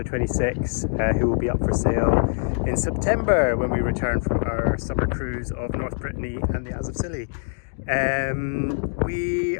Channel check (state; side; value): silent; right; digital silence